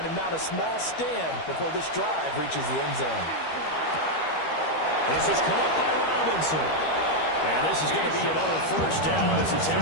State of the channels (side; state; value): right; late; 13 ms